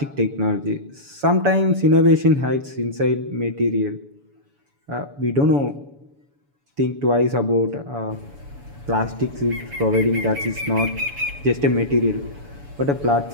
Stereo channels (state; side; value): late; left; 7.0 ms